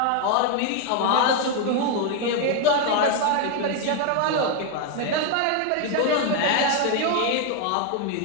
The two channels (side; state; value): both; different; correlation 0.01